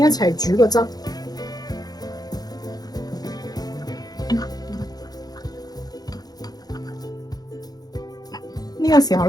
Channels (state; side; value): late; right; 0.19 ms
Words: 齊煮個汁，呢個時候